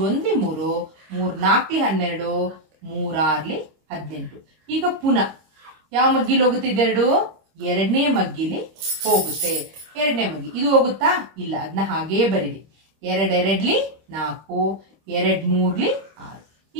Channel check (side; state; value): left; late; 26 ms